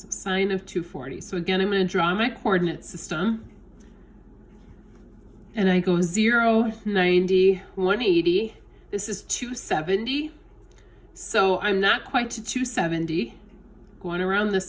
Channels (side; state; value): both; identical; correlation 1.00